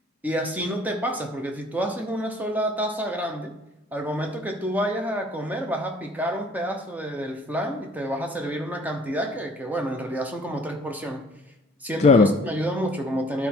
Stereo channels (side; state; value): both; normal; correlation 0.54